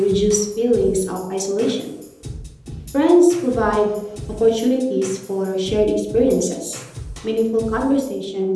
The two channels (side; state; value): both; identical; correlation 1.00